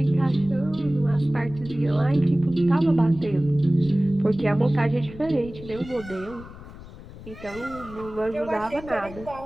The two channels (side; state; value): left; noise; rumble, 16 dB below the sound